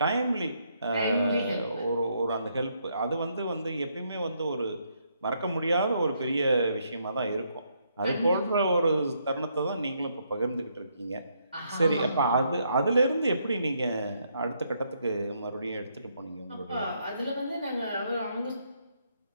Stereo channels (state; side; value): inverted; both; correlation -0.74